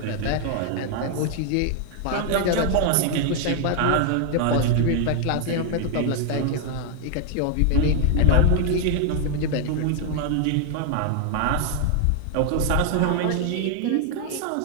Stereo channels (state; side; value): different; both; correlation 0.00